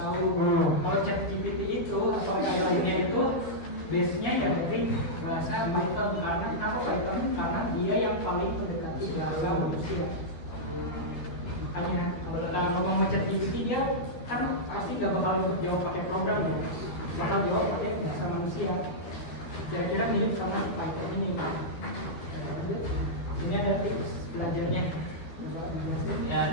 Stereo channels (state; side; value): late; right; 12 ms